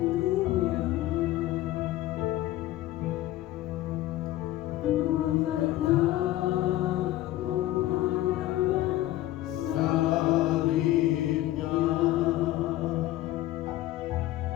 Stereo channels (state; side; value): quieter; right; 15.4 dB